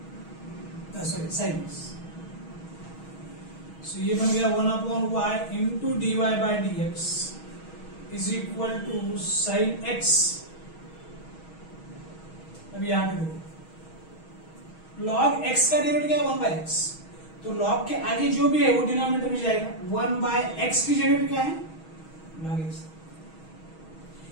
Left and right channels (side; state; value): right; late; 6.3 ms